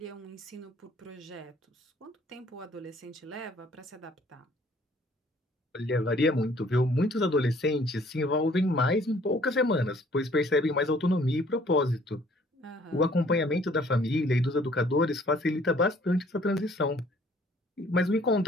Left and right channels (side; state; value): both; normal; correlation 0.58